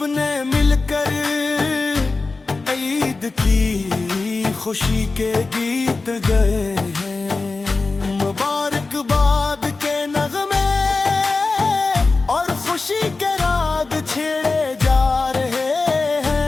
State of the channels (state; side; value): quieter; right; 3.8 dB